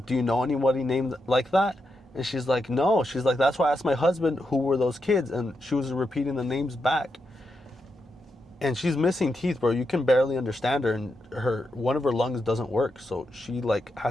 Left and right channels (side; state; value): both; normal; correlation 0.84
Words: do you know anybody named like that? And she's like, no. She's like, that's why I asked my husband who were those kids, and she was repeating the names back. And she's missing teeth, bro. You can barely understand her, and one of her lungs doesn't work, so she like